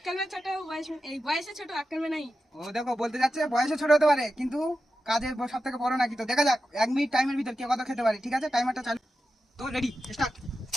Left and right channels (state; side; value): normal; both; correlation 0.91